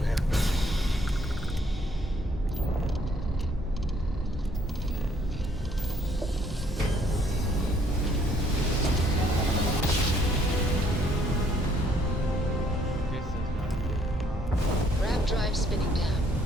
him. Grab drive spinning down.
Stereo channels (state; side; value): normal; both; correlation 0.65